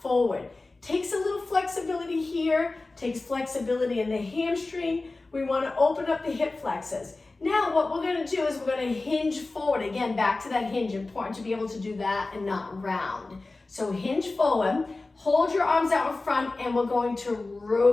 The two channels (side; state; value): right; quieter; 3.3 dB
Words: forward. Takes a little flexibility here, takes flexibility in the hamstring. We want to open up the hip flexors. Now what we're going to do is we're going to hinge forward. Again, back to that hinge. Important to be able to do that and not round. So hinge forward, hold your arms out in front, and we're going to